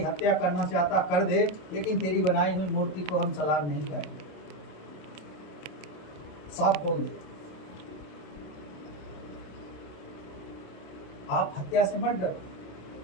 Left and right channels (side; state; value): right; late; 27 ms